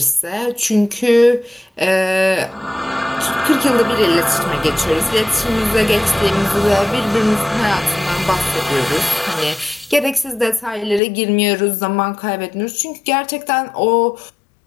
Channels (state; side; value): drops out; right; at 11.0 s